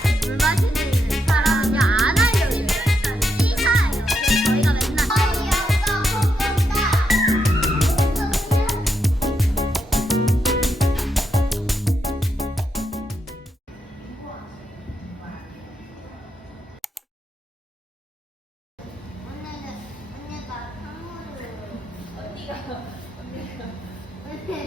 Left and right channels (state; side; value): normal; both; correlation 0.82